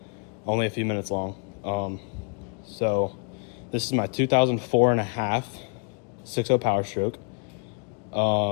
only a few minutes long. So this is my 2004 and a half 6.0 Power Stroke.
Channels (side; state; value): right; quieter; 39.9 dB